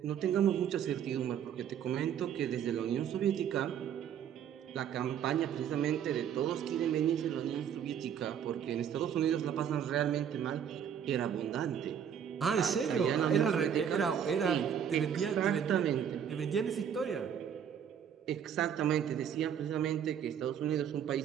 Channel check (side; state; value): left; quieter; 8.7 dB